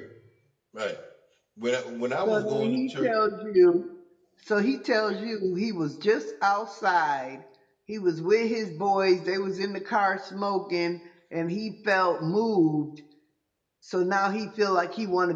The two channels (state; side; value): identical; both; correlation 1.00